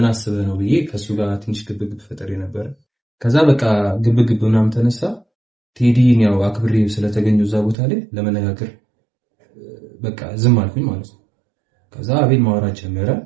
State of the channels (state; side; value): drops out; left; at 7.8 s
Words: አስበ ነው ብዬ ከሱ ጋር ትንሽ ግብግብ ፈጠር ነበር ከዛ በቃ ግብግብ ምናምን ተነሳ ቴዲን ያው አክብሬው ስለተገኘው እዛ ቦታ ላይ ለመነጋገር በቃ ዝም አልኩኝ ማለት ነው ከዛ አቤል ማውራት ጀመረ